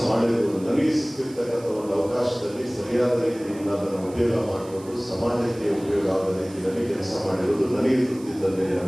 ಮಾಡಿರ್ಬೋದು. ನನಗೆ ಸಿಕ್ಕಿರ್ತಕ್ಕಂಥ ಒಂದು ಅವಕಾಶದಲ್ಲಿ ಸರಿಯಾದ ರೀತಿಯಿಂದ ಅದನ್ನು ಉಪಯೋಗ ಮಾಡಿಕೊಂಡು ಸಮಾಜಕ್ಕೆ ಉಪಯೋಗ ಆಗದ ರೀತಿಯಲ್ಲಿ ಕೆಲಸ ಮಾಡಿರೋದು ನನಗೆ ತೃಪ್ತಿ ತಂದೆ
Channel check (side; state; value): right; noise; hiss, 22 dB below the sound